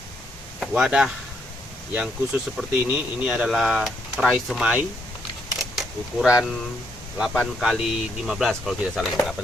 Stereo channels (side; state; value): both; normal; correlation 0.75